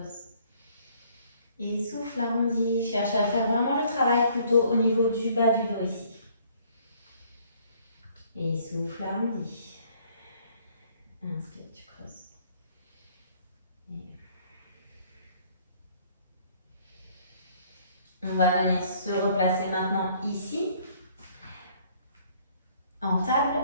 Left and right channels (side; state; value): both; inverted; correlation -0.61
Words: Et souffle, arrondi. Cherche à faire vraiment le travail plutôt au niveau du bas du dos ici. Et souffle, arrondi. Inspire, tu creuses. Et on va venir se replacer maintenant ici, en table.